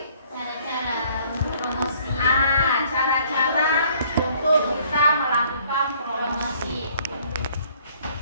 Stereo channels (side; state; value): both; inverted; correlation -0.60